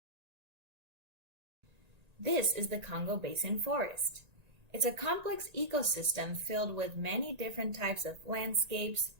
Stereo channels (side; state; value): left; late; 1.9 ms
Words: This is the Congo Basin forest. It's a complex ecosystem filled with many different types of landscapes,